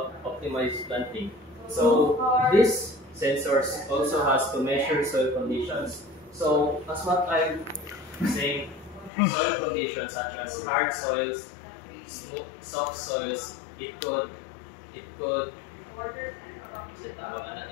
optimized planting. So this sensors also has to measure soil conditions. So as what I'm saying, soil conditions such as hard soils, soft soils, it could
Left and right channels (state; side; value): drops out; right; at 9.1 s